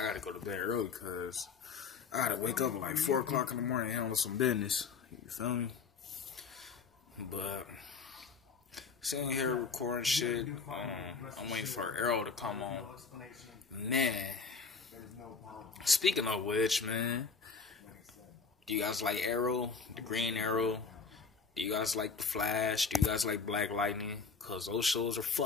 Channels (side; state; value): right; quieter; 5.2 dB